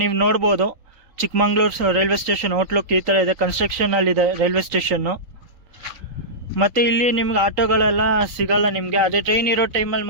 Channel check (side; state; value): left; late; 3.8 ms